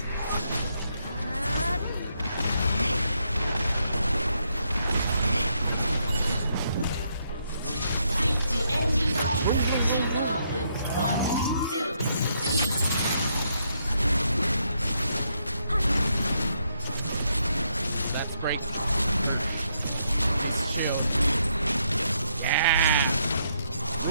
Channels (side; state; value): both; inverted; correlation -0.76